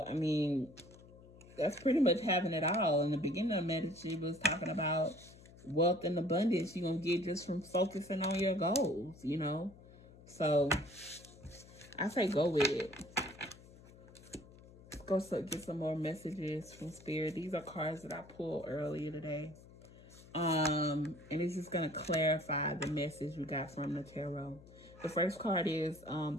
I mean, that's pretty much having it all. In the beginning of Medici was talking about wealth and abundance you're going to get just from focusing on your goals, So, I say go with it. Let's go get some more messages from Spirit. These are cards that I pulled earlier today. And it's just going to clarify the message we got from the tarot. The first card is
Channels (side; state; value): left; noise; hum, 21 dB below the sound